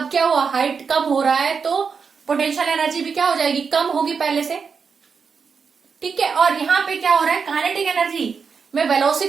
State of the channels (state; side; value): quieter; left; 5.7 dB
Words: क्या हुआ, हाइट कम हो रहा है, तो पोटेंशियल एनर्जी भी क्या हो जाएगी, कम होगी पहले से। ठीक है, और यहाँ पे क्या हो रहा है, काइनेटिक एनर्जी में